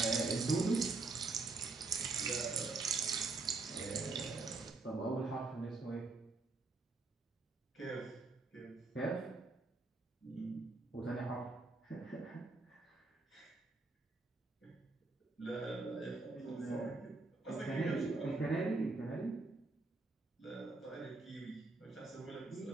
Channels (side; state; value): left; quieter; 3.7 dB